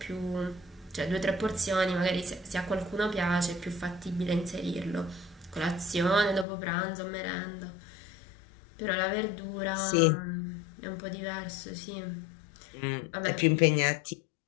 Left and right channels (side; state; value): right; drops out; at 6.5 s